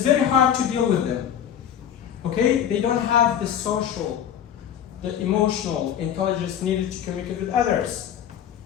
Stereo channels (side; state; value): right; quieter; 9.6 dB